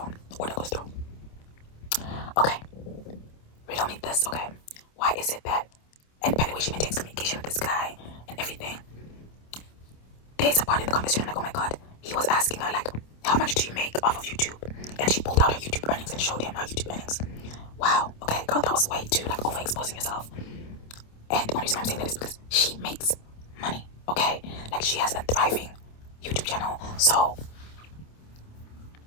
Order goes through. Okay, riddle me this, okay? Why is it that, and by the way, she maintains communication with this guy and everything. There's a part in the conversation, I'm like, oh my god, he was asking her, like, how much do you make off of YouTube? And she pulled out her YouTube earnings and showed him her YouTube earnings. Wow, okay, girl, that was way too, like, overexposing yourself. And the only reason I'm saying that is because she makes money, okay? Like, she has a thriving YouTube channel, so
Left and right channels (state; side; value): late; right; 27 ms